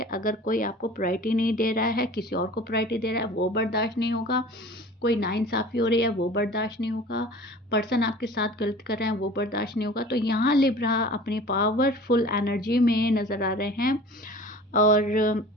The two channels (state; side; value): normal; both; correlation 0.42